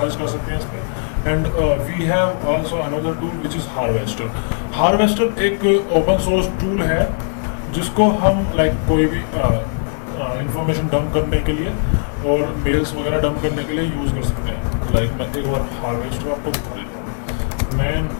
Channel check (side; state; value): right; silent; digital silence